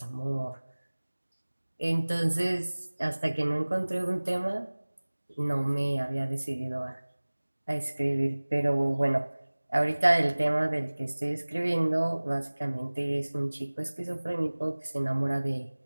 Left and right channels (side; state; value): both; inverted; correlation -1.00